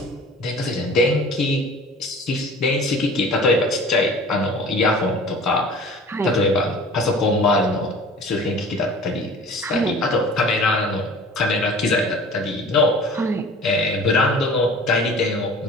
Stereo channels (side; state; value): both; normal; correlation 0.43